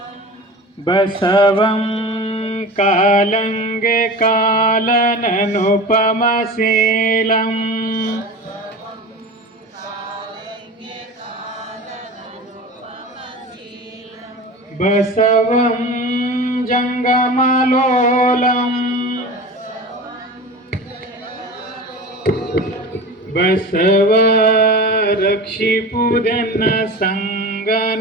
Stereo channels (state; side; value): normal; both; correlation 0.33